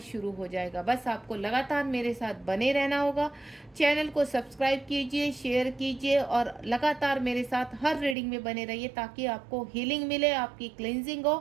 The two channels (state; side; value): drops out; left; at 8.2 s